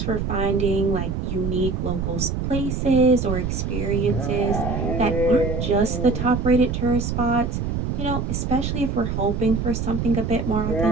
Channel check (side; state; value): right; noise; rumble, 2 dB below the sound